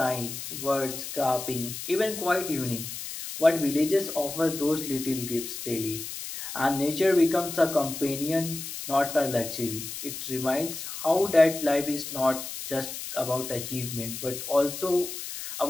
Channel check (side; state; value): left; noise; hiss, 8 dB below the sound